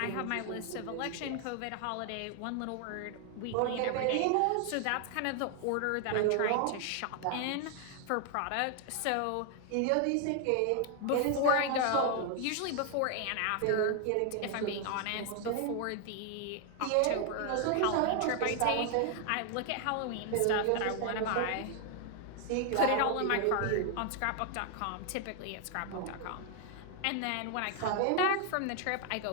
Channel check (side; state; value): both; different; correlation 0.00